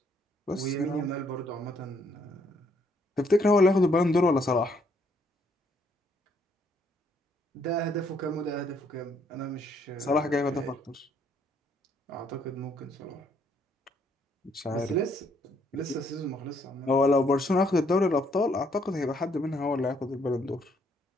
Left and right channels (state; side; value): normal; both; correlation 0.69